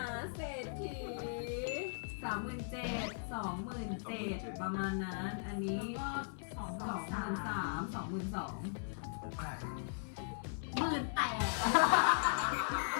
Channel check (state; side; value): silent; right; 52 dB below the other